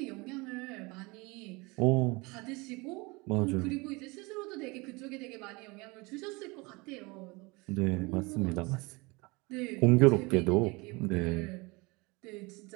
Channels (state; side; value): quieter; left; 25.6 dB